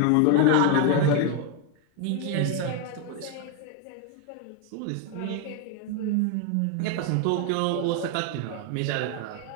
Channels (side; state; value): both; different; correlation 0.01